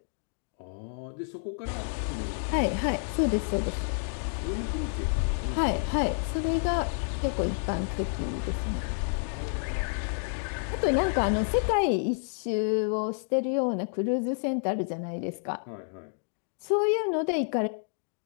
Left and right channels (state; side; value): silent; right; digital silence